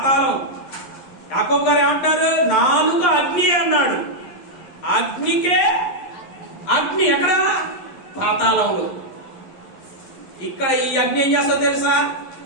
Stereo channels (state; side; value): late; right; 11 ms